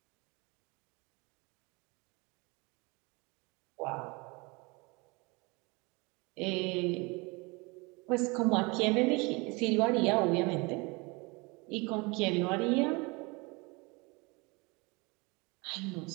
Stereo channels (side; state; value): left; quieter; 27.2 dB